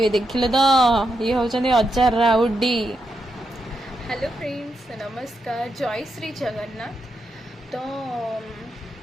देखिले तो ये होचंदी अजा राउडी। हेलो फ्रेंड्स नमस्कार जय श्री जगन्नाथ। तो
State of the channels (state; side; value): normal; both; correlation 0.83